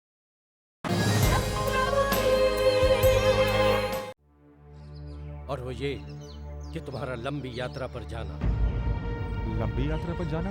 और वो ये कि तुम्हारा लंबी यात्रा पर जाना। लंबी यात्रा पर जाना?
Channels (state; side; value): identical; both; correlation 1.00